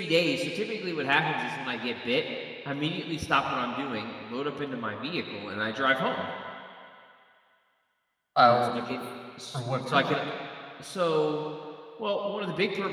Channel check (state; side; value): identical; both; correlation 1.00